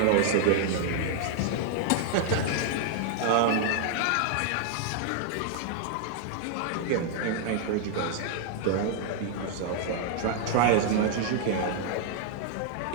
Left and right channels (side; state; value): both; different; correlation 0.00